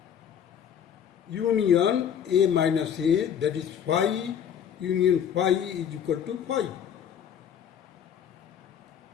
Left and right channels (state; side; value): quieter; right; 8.6 dB